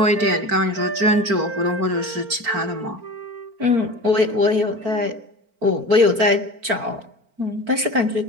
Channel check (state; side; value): late; left; 4.4 ms